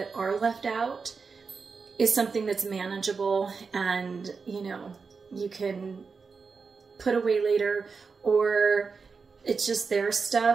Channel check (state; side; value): quieter; left; 5.0 dB